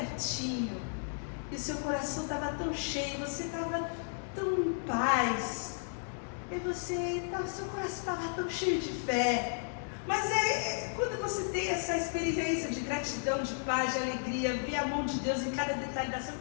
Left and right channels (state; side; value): silent; right; digital silence